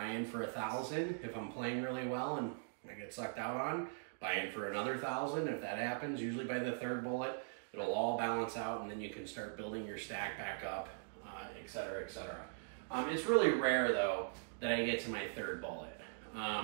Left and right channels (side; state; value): left; silent; digital silence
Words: in for 1,000 if I'm playing really well and I get sucked out on. Buy in for another 1,000 if that happens. Usually by the 3rd bullet, it'll all balance out and then you can start building your stack back up, etc., etc. It's really rare though that I get to my 3rd bullet.